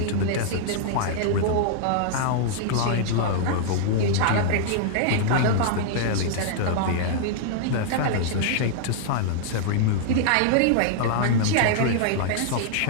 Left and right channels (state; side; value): different; both; correlation -0.01